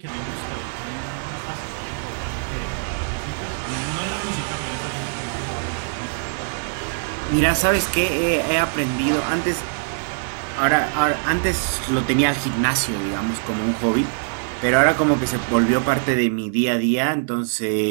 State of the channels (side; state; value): left; silent; digital silence